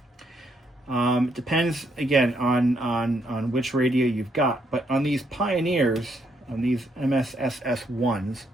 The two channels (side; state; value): both; normal; correlation 0.74